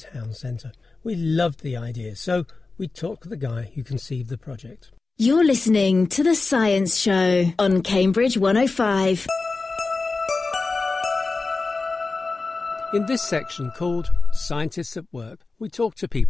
centre. We loved the idea, so we talked to the guy who conceived the project. You're listening to The Science Show on Cambridge 105. In this section called Scientists at Work, we talk to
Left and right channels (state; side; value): quieter; right; 3.8 dB